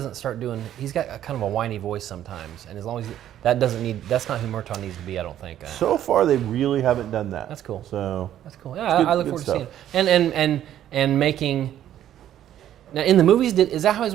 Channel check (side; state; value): left; quieter; 11.5 dB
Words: start doing, he's got a kind of a whiny voice sometimes, and as long as that's not who Murtaugh needs to be, I don't think. So far, they really haven't done that. That's cool. So that's cool. Yeah, I look forward to seeing it. And making. Now, in the movies, is that how his